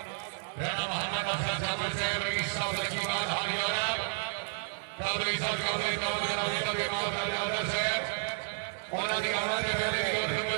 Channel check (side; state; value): left; silent; digital silence